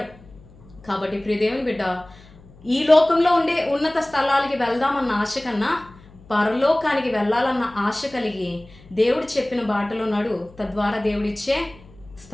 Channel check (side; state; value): left; noise; hum, 23 dB below the sound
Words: కాబట్టి ప్రియ దేవుని బిడ్డ, ఈ లోకంలో ఉండే ఉన్నత స్థలాలకి వెళ్దామన్న ఆశ కన్నా పరలోకానికి వెళ్ళాలన్న ఆశ కలిగి దేవుడు చెప్పిన బాటలో నడు, తద్వారా దేవుడిచ్చే